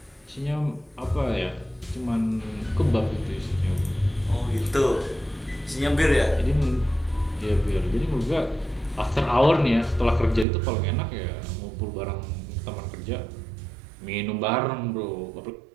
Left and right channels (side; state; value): left; drops out; at 10.5 s